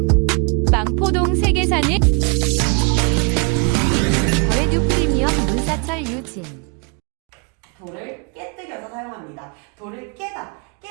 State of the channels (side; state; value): left; quieter; 34.0 dB